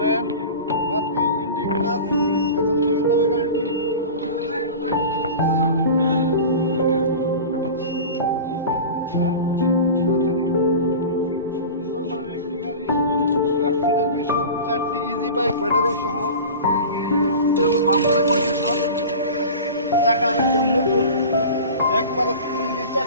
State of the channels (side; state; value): both; inverted; correlation -0.34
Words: বাতি ইন্ডিকেটার এখন থেকে যাবে গাড়িটি। চারটি ইজি বাইক ব্যাটারি সহ বাম্পারের কন্ডিশন, চাকা একদম নতুন, একবারে